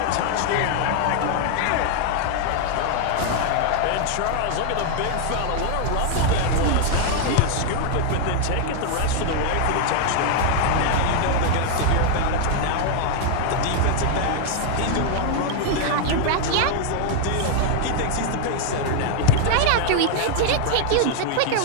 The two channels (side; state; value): both; different; correlation 0.00